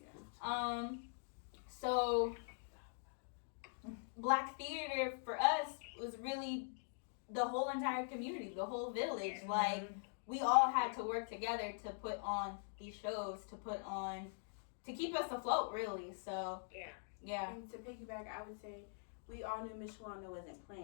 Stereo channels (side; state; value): right; silent; digital silence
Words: So Black theater for us was really the whole entire community, the whole village. Like, we all had to work together to put on these shows, to keep us afloat, really. So yeah. And to piggyback, I would say we all knew Miss Wanda wasn't